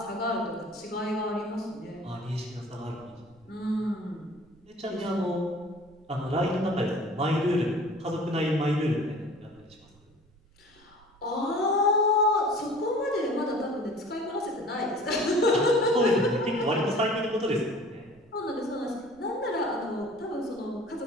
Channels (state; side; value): noise; right; rumble, 29 dB below the sound